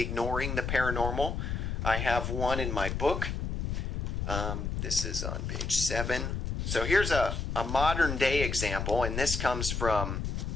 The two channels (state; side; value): noise; left; rumble, 2 dB below the sound